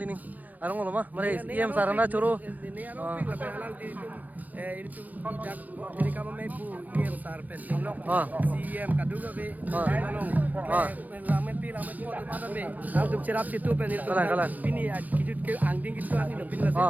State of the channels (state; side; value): late; left; 0.081 ms